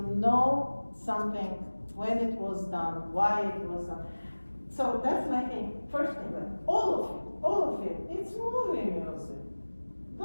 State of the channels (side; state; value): both; inverted; correlation -1.00